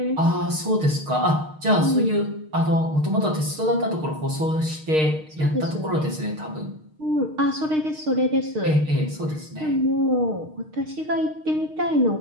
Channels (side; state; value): left; late; 6.5 ms